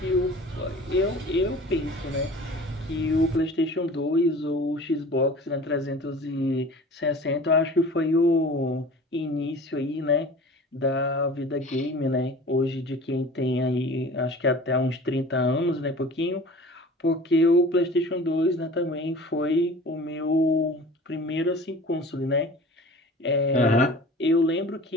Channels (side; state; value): both; normal; correlation 0.42